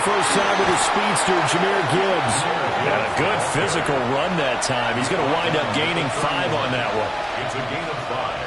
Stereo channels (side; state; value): both; identical; correlation 1.00